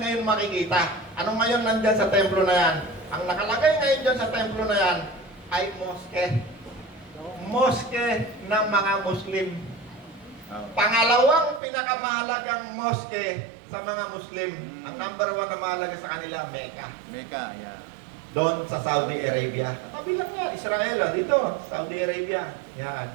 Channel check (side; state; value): left; drops out; at 11.6 s